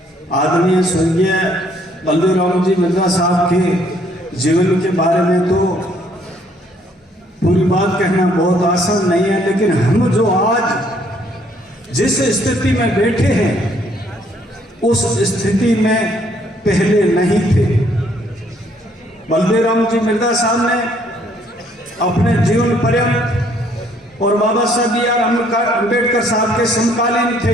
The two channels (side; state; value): both; normal; correlation 0.65